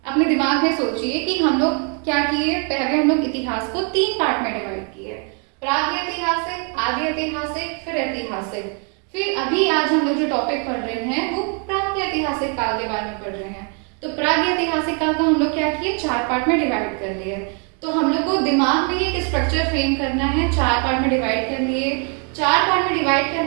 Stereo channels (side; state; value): left; quieter; 39.0 dB